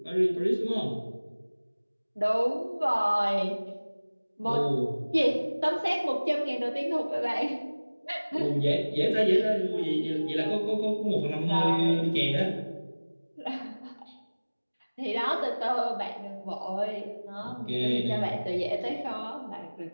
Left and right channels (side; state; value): both; inverted; correlation -1.00